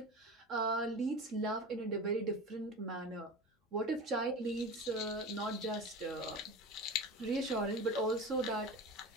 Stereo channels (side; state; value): both; normal; correlation 0.31